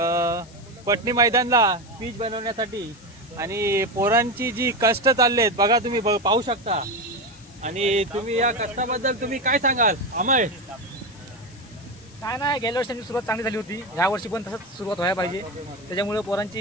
पटनी मैदानला पिच बनवण्यासाठी आणि पोरांची जी कष्ट चाललेत बघा, तुम्ही पाहू शकता। आणि तुम्ही या कष्टाबद्दल तुम्ही काय सांगाल अमय? काय नाही, गेल्या वर्षी सुरुवात चांगली झाली होती, या वर्षी पण तसंच सुरुवात व्हायला पाहिजे। त्याच्यामुळे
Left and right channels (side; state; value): left; noise; hiss, 24 dB below the sound